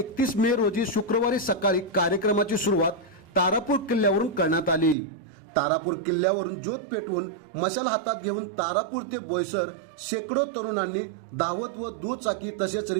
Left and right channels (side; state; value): left; drops out; at 5.0 s